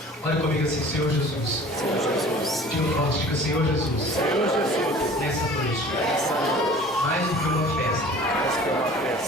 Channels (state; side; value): normal; both; correlation 0.45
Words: Olha comigo assim: Senhor Jesus. Senhor Jesus. Diga forte, diga: Senhor Jesus. Senhor Jesus. Nessa noite, mais do que uma festa,